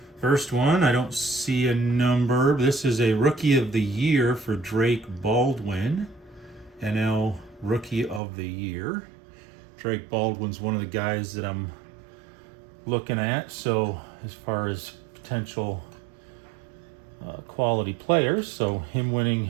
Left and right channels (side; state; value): left; drops out; at 8.2 s